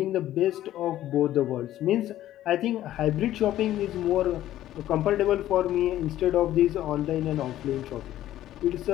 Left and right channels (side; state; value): right; quieter; 13.3 dB